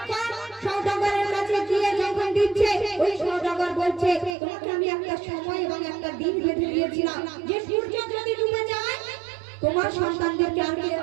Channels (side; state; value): left; drops out; at 4.4 s